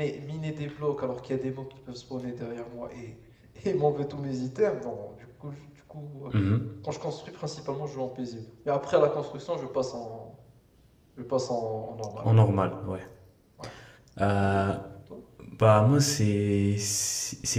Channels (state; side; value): identical; both; correlation 1.00